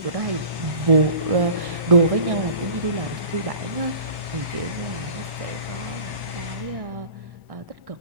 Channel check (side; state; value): left; late; 1.1 ms